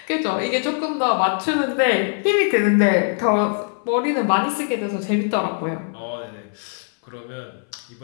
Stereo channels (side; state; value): right; silent; 62 dB below the other